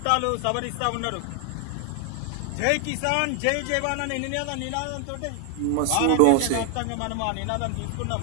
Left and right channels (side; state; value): both; different; correlation 0.00